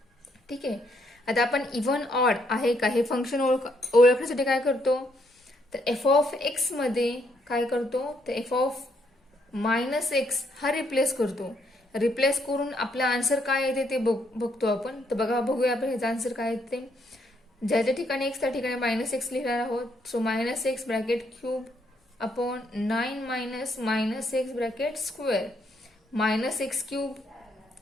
ठीक आहे. आता आपण इव्हन ऑड आहे का हे function ओळखण्यासाठी काय करतो, तर एफ ऑफ एक्स मध्ये काय करतो, तर एफ ऑफ -x हा रिप्लेस करतो. रिप्लेस करून आपला आन्सर काय येते ते बघतो आपण. तर बघूया आपण ह्याचा आन्सर काय येते. ज्याच्या ठिकाणी x त्या ठिकाणी -x लिहिणार आहोत. So -x bracket cube upon 9 minus -x bracket square. -x cube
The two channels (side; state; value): both; normal; correlation 0.73